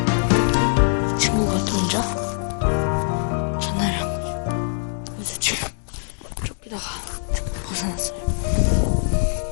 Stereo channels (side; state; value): right; silent; digital silence